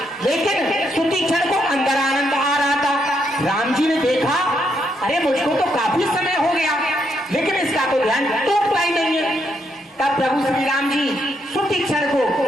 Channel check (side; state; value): both; normal; correlation 0.77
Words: लेकिन सुतीक्षण को अंदर आनंद आ रहा था। राम जी ने देखा, अरे मुझको तो काफी समय हो गया, लेकिन इसका तो ध्यान टूटता ही नहीं है। तब प्रभु श्री राम जी सुतीक्षण को